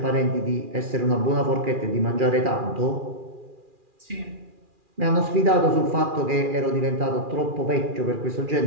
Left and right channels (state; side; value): late; left; 2.4 ms